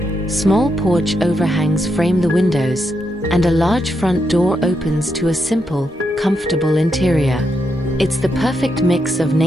Small porch overhangs frame the windows, and a large front door opens to a simple, comfortable interior. It's the perfect mix of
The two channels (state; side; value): normal; both; correlation 0.82